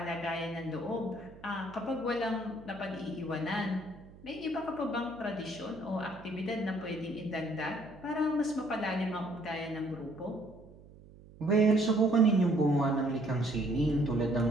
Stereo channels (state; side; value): noise; right; hum, 21 dB below the sound